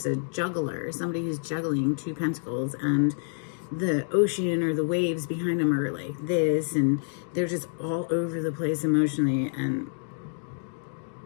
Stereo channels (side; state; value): right; silent; digital silence